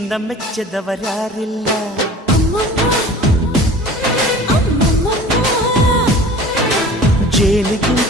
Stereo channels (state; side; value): normal; both; correlation 0.43